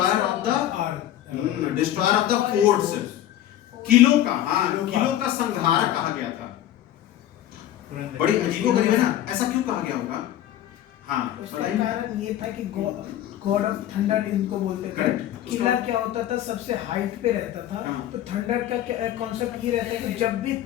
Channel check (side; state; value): right; quieter; 12.4 dB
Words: ऑफ द फोर्ट्स, किलों का, किलों का संहारक कहा गया था। बड़ी अजीबोगरीब है ना, ऐसा क्यों कहा गया होगा? हाँ, उसका कारण ये था कि गॉड ऑफ थंडर इनको बोलते थे। किला क्या होता था? सबसे हाइट पे रहता था। तो थंडर का कॉन्सेप्ट ये रहता है कि जब भी